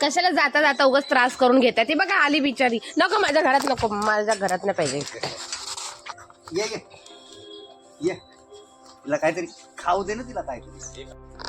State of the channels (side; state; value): both; identical; correlation 1.00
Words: जाता जाता उगाच त्रास करून घेता. ती बघा आली बिचारी. नको माझ्या घरात, नको माझ्या घरात नाही पाहिजे. ये तिला काहीतरी खाऊ दे ना, तिला काहीतरी.